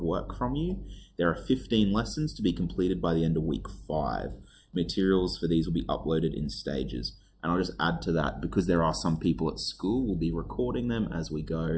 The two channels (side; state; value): both; identical; correlation 1.00